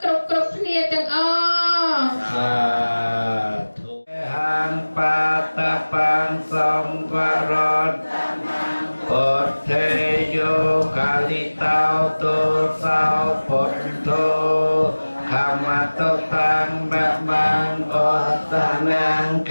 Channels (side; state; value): both; inverted; correlation -1.00